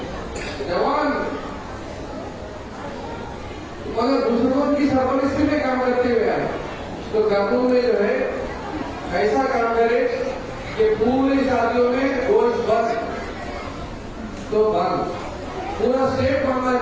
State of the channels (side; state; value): both; identical; correlation 1.00